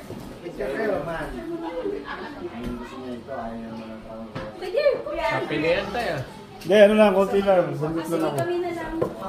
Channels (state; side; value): identical; both; correlation 1.00